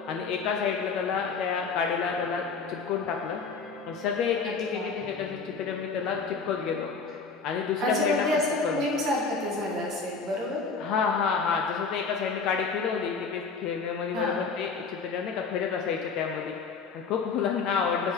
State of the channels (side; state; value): right; quieter; 4.9 dB